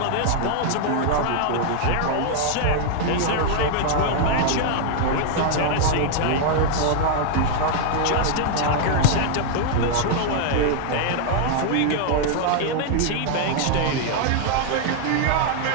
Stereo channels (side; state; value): both; different; correlation 0.00